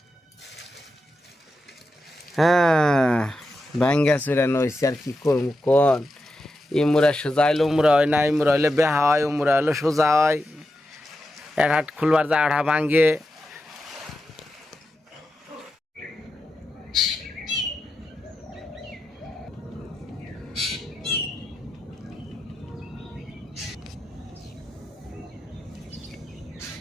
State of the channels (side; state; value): both; normal; correlation 0.88